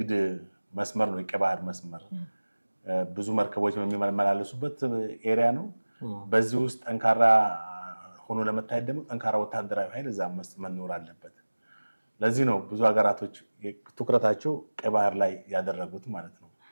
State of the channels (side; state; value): both; inverted; correlation -1.00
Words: መስመር ነው የቀይ ባህር መስመር። ብዙ መርከቦች የሚመላለሱበት ኤሪያ ነው። በዚህ ውስጥ ጠንካራ ሆኖ ለመታየት ደግሞ ጠንካራ ወታደራዊ ኃይል እዛ መኖር አለበት። ለዚህ ነው ብዙ ሀገራቶች ትኩረታቸው ቀይ ባህር ላይ ያደረጉት ማለት ነው።